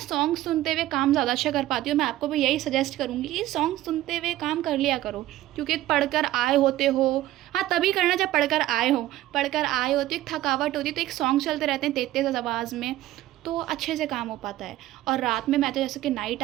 सुनते हुए काम ज़्यादा अच्छा कर पाती हूँ. मैं आपको भी यही सजेस्ट करूँगी कि सॉन्ग सुनते हुए काम कर लिया करो, क्योंकि पढ़कर आए होते हो. हाँ तभी करना जब पढ़कर आए हो. पढ़कर आए होते एक थकावट होती है तो एक सॉन्ग चलते रहते हैं तेज आवाज़ में, तो अच्छे से काम हो पाता है. और रात में मैं तो जैसे कि नाइट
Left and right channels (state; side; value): quieter; left; 15.0 dB